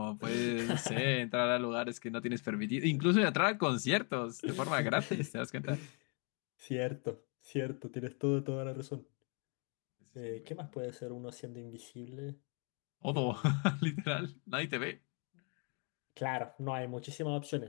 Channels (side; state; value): right; quieter; 37.0 dB